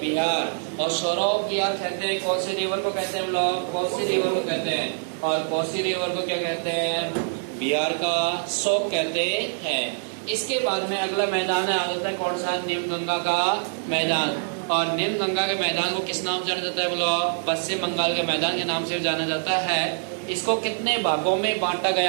और सौरव बिहार कहते हैं, कोसी रिवर को कहते हैं हम लोग, कोसी रिवर को कहते हैं। और कोसी रिवर को क्या कहते हैं? बिहार का शोक कहते हैं। इसके बाद में अगला मैदान है, आ जाता है कौन सा? निम्नगंगा का मैदान। और निम्नगंगा के मैदान को किस नाम से जाना जाता है बोलो? पश्चिम बंगाल के मैदान के नाम से जाना जाता है। इसको कितने भागों में बांटा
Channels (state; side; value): silent; left; digital silence